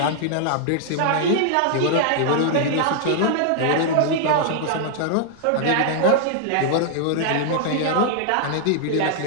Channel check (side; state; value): both; different; correlation 0.00